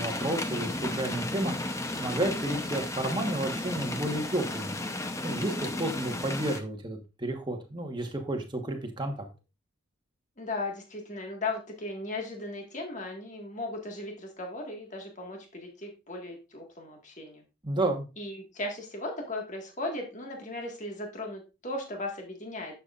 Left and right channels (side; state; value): both; normal; correlation 0.43